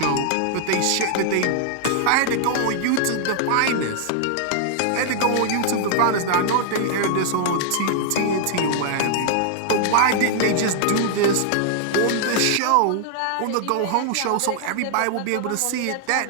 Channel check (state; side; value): different; both; correlation -0.01